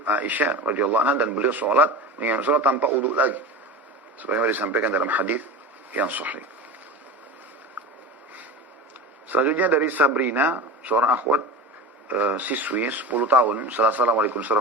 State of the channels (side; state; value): both; normal; correlation 0.28